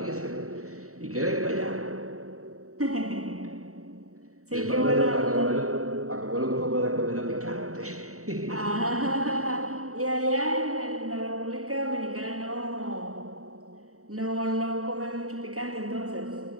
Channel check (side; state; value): left; late; 0.65 ms